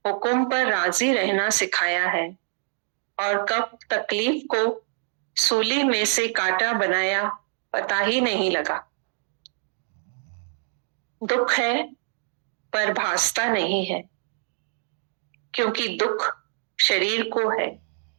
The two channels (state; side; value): silent; left; digital silence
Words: हुक्म पर राजी रहना सिखाया है। और कब तकलीफ को सूली में से कांटा बनाया पता ही नहीं लगा। दुख है पर भासता नहीं है, क्योंकि दुख शरीर को है